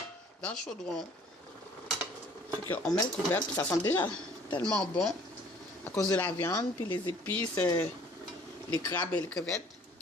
le chaudron. On met le couvercle, puis ça sent déjà tellement bon à cause de la viande, puis les épices, les crabes et les crevettes.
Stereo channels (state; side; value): normal; both; correlation 0.54